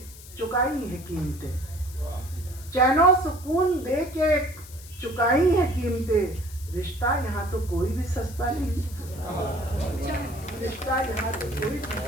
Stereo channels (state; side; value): noise; left; hiss, 18 dB below the sound